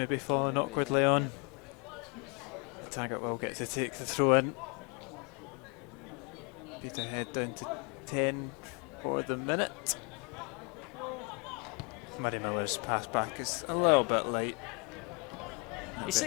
fallen awkwardly on. Yep. Taggart will get to take the throw in. Peterhead down to 10 for the minute. Murray Miller's pass back is a little bit light. He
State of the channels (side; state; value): right; quieter; 30.6 dB